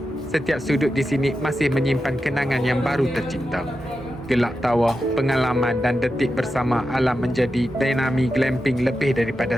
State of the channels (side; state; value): both; normal; correlation 0.89